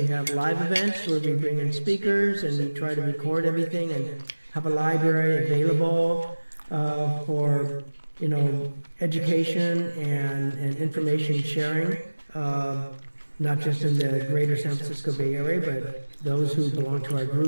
have live events where we bring in speakers and we try to record everything and have a library available for, you know, education and information sharing, not just in the greater San Francisco Bay Area, but those who belong to our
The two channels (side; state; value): both; inverted; correlation -1.00